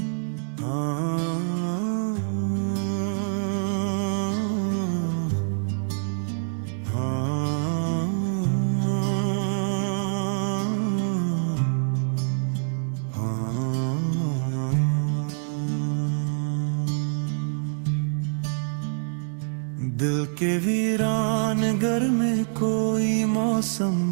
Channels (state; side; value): silent; left; digital silence